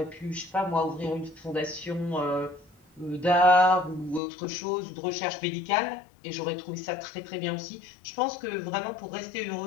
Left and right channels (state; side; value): drops out; right; at 4.2 s